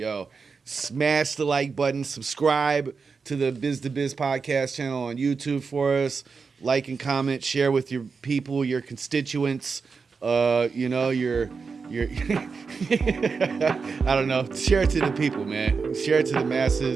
smash the like button, subscribe to the Biz to Biz podcast channel on YouTube for us. Like and comment, share with your people, your constituents, your I don't know. Share it to the people, man. Share it to the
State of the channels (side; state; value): left; quieter; 5.1 dB